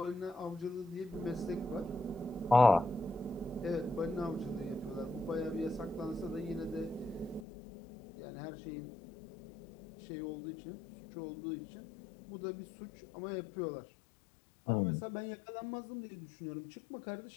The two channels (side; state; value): right; drops out; at 7.5 s